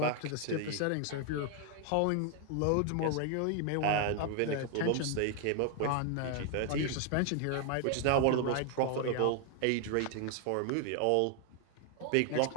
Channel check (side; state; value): both; different; correlation 0.00